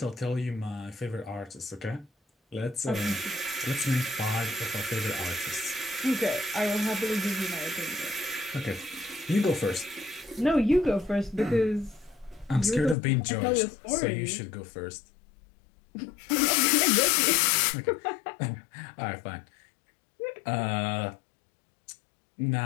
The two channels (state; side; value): drops out; right; at 13.0 s